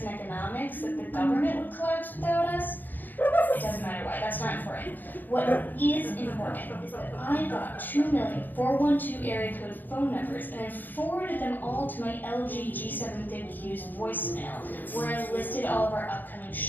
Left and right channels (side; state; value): right; late; 0.090 ms